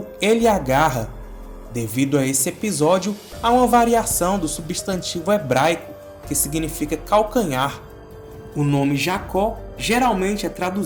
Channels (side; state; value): both; identical; correlation 1.00